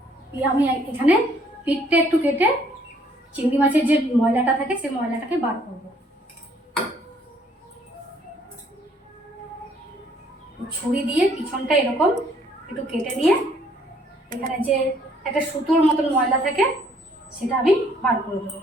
আমি এখানে পিঠটা একটু কেটে চিংড়ি মাছের যে ময়লাটা থাকে সেই ময়লাটাকে বার করব। ছুরি দিয়ে পিছনটা এরকম একটু কেটে নিয়ে এখানে যে একটা সুতোর মতন ময়লা থাকে সেটা আমি বার করে দেবো।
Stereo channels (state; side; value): normal; both; correlation 0.64